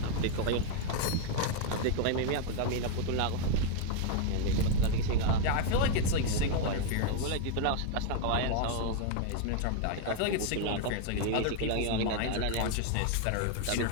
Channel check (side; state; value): both; different; correlation 0.00